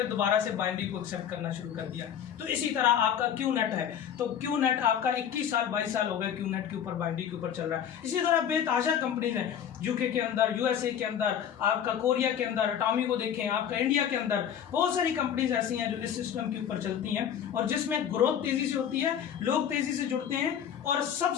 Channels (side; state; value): right; quieter; 9.0 dB